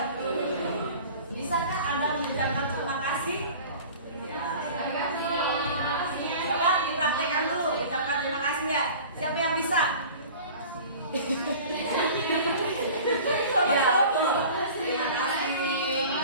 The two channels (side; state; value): both; inverted; correlation -0.41